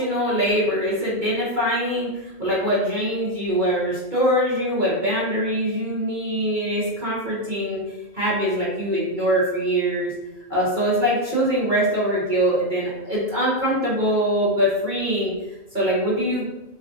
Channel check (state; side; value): late; left; 2.3 ms